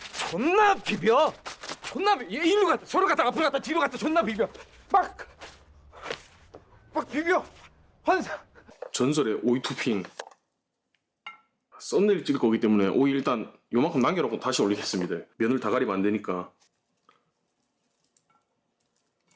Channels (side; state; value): both; identical; correlation 1.00